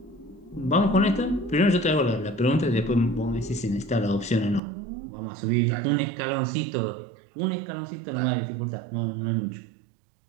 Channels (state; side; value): drops out; left; at 4.6 s